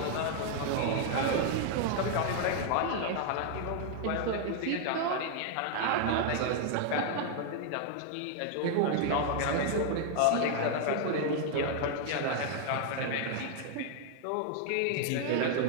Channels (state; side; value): different; both; correlation 0.00